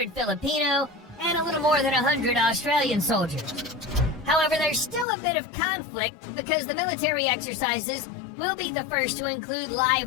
Filipino, and a little more than 100 Australian soldiers. However, there's still a bit of conflict because the military exercises will be the first to include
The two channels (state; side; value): drops out; right; at 5.1 s